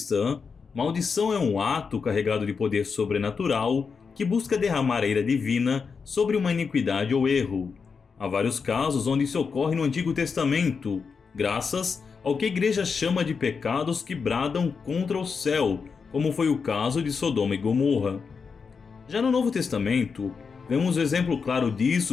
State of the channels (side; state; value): right; quieter; 5.5 dB